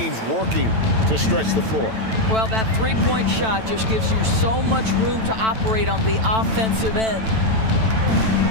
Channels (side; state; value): left; late; 9.1 ms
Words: working to stretch the floor. Well, that 3-point shot just gives you so much room to operate on the offensive end.